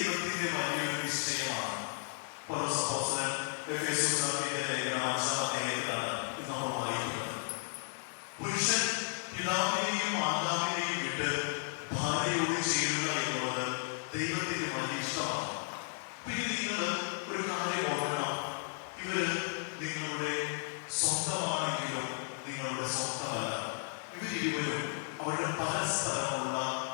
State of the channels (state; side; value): silent; right; 55 dB below the other